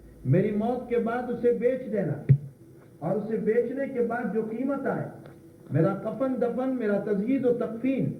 میری موت کے بعد اسے بیچ دینا، اور اسے بیچنے کے بعد جو قیمت آئے میرا کفن دفن، میرا تجہیز و تکفین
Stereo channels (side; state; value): both; identical; correlation 1.00